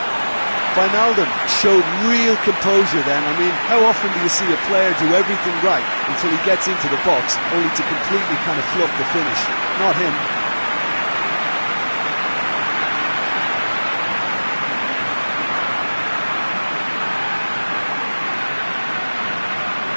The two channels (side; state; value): both; inverted; correlation -1.00